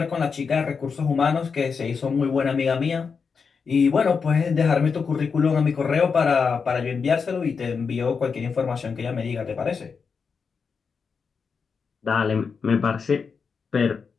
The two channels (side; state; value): right; quieter; 5.6 dB